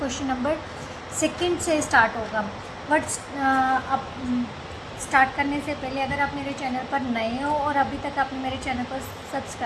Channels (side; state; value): both; identical; correlation 1.00